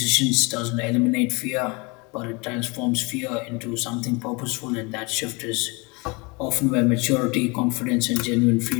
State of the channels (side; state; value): right; quieter; 28.2 dB